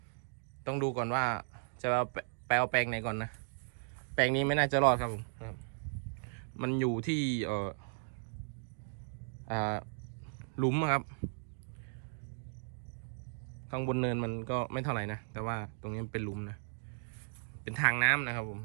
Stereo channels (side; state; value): left; silent; digital silence